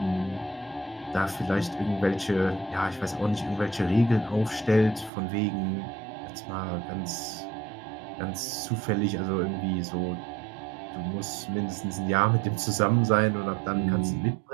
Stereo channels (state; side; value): drops out; left; at 5.1 s